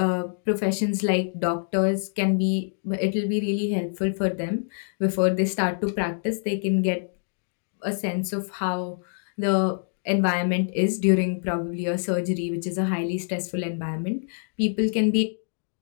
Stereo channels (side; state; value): right; silent; digital silence